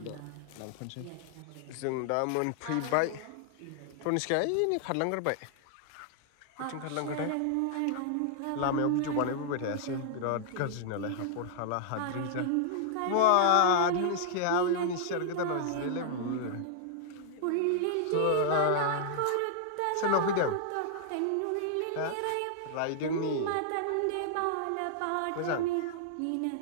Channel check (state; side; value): different; both; correlation -0.01